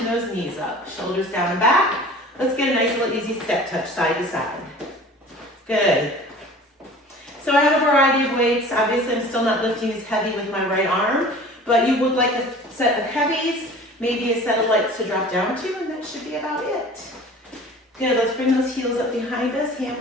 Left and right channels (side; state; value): both; normal; correlation 0.43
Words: those knees up, shoulders down and back. Let's get a nice little easy step touch side to side. Good. So I have a variety of weights. Obviously, I'm still not lifting as heavy with my right arm, but you would like a set of heavies, maybe a set of lights to drop down to, and that should be about it. Good, let's bring those heels up behind us, hand